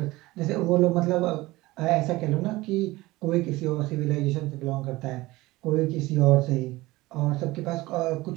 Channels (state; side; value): quieter; left; 19.7 dB